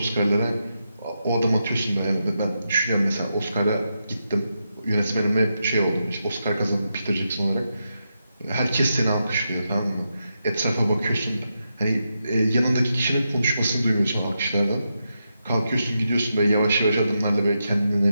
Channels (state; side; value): inverted; both; correlation -0.85